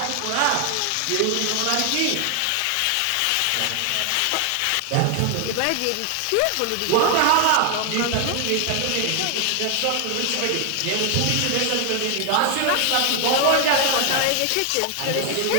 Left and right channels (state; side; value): different; both; correlation 0.00